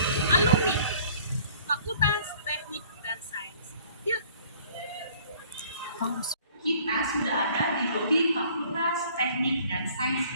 alumni Fakultas Teknik dan Sains. Yuk. Kita sudah ada di lobi Fakultas Teknik dan Sains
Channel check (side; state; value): both; inverted; correlation -0.54